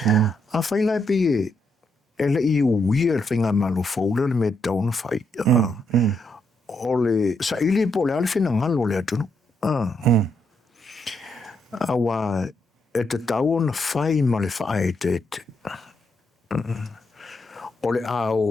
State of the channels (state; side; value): normal; both; correlation 0.78